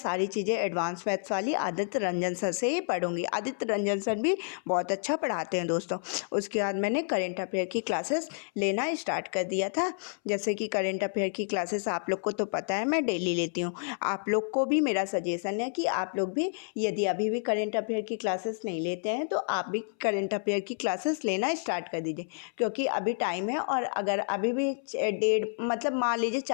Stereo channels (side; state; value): right; silent; 58 dB below the other